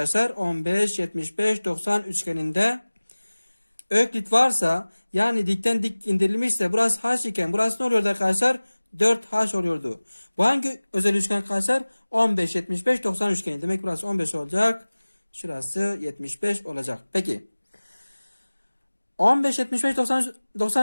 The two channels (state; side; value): inverted; both; correlation -1.00